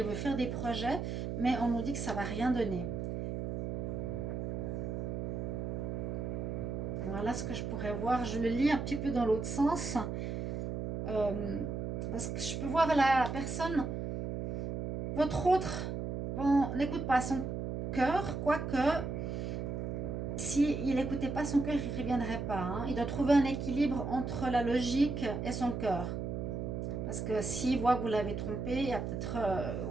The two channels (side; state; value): right; noise; hum, 3 dB below the sound